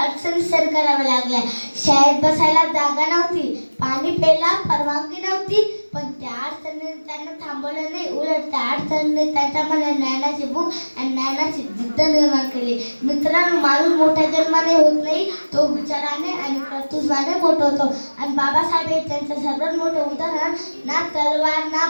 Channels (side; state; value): both; inverted; correlation -1.00